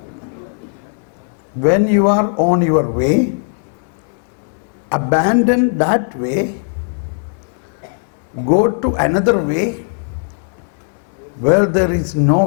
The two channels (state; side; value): silent; right; digital silence